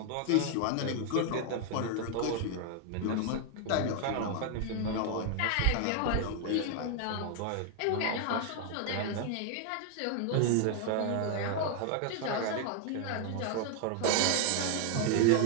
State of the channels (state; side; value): different; both; correlation 0.00